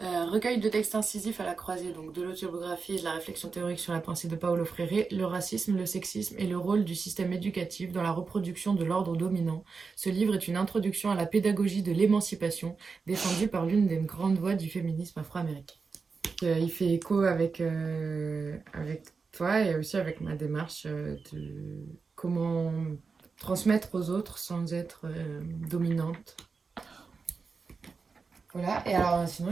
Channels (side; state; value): left; quieter; 4.8 dB